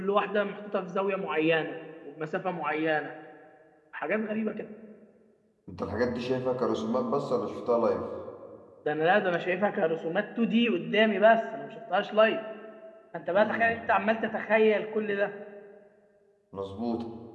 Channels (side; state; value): both; identical; correlation 1.00